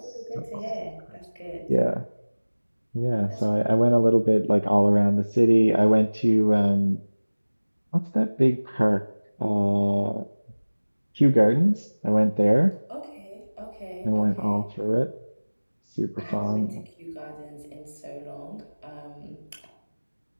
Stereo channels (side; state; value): both; inverted; correlation -1.00